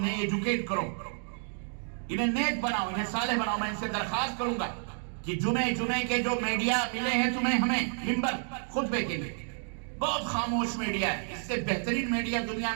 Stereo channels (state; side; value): silent; left; 58 dB below the other